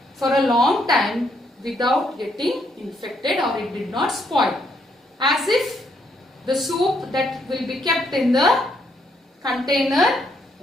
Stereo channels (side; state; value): both; normal; correlation 0.74